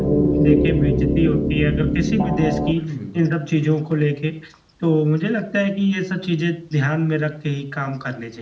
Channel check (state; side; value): identical; both; correlation 1.00